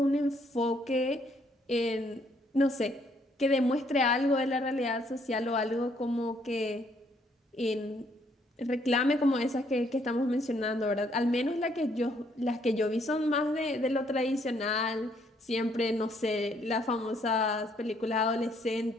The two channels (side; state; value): both; normal; correlation 0.68